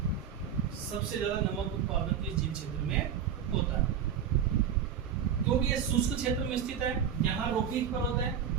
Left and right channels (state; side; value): quieter; left; 8.1 dB